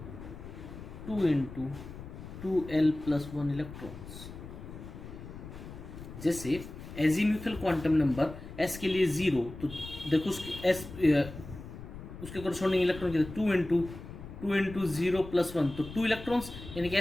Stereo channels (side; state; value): left; noise; rumble, 13 dB below the sound